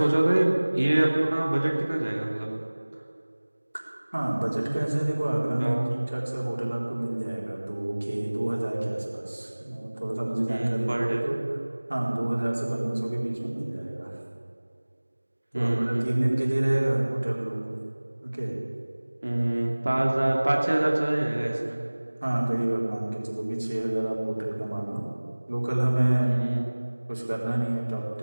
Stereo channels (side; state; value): both; inverted; correlation -1.00